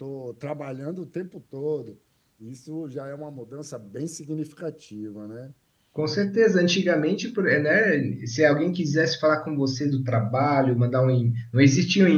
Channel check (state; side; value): identical; both; correlation 1.00